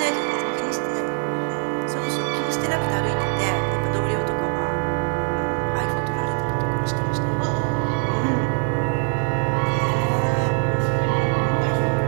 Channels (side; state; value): left; quieter; 37.1 dB